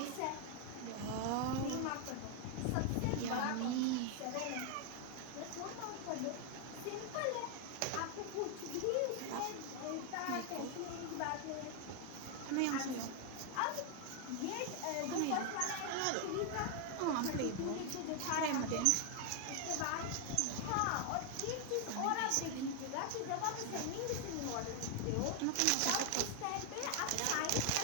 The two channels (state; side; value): different; both; correlation 0.01